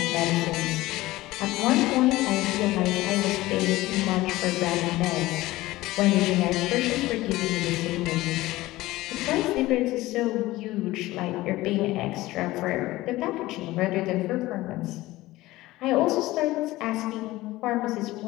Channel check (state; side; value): quieter; right; 18.0 dB